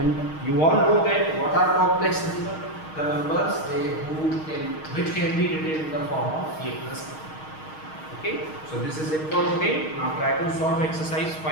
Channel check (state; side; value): late; right; 6.4 ms